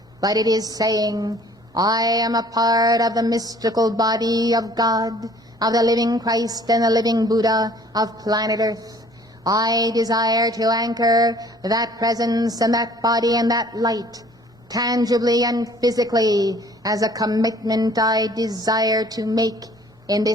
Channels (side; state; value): both; normal; correlation 0.54